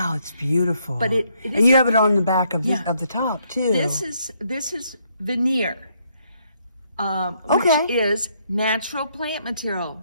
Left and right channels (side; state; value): both; inverted; correlation -0.72